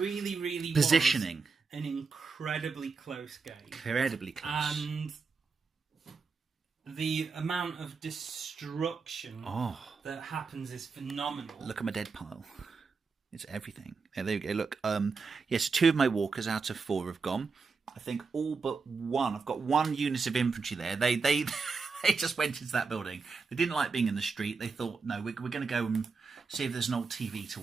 really positioning. Was an incredibly close game. Incredibly close. And the amount of destruction that happens is phenomenal. Look at my dead pile. It's everything. There you go. Look, yes, 2 of my walkers out of 4 have gone. I think all but 1. I've got 1 unit of infantry there. They they just went into that building. They didn't like being in the street. They thought, no, we're going to go and see if there's an old TV to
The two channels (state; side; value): quieter; left; 4.8 dB